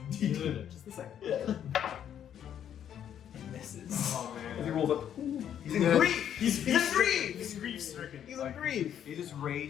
d10. Just a second. Yeah. He misses. Oh man. He rolls up. He's in grief. He's in grief. He's grief stricken. He's in grief. He's just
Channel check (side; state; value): right; quieter; 9.6 dB